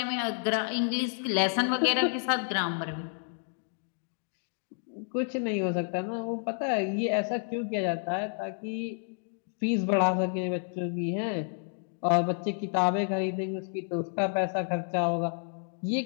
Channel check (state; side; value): silent; right; 58 dB below the other